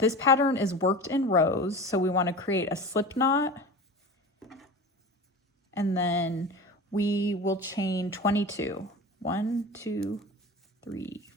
pattern is worked in rows, so we want to create a slip knot, and then we will chain 22. 1, 2, 3,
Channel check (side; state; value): both; normal; correlation 0.33